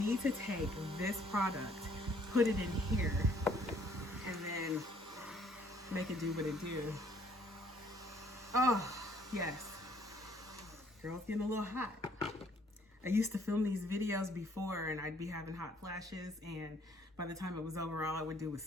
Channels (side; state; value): both; normal; correlation 0.62